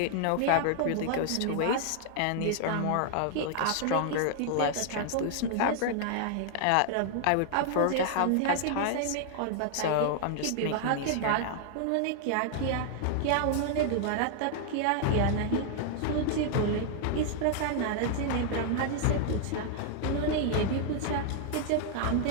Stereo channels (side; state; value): both; different; correlation 0.00